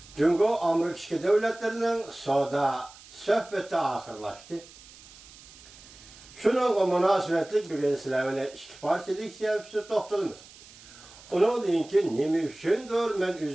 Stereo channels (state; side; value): noise; right; hiss, 21 dB below the sound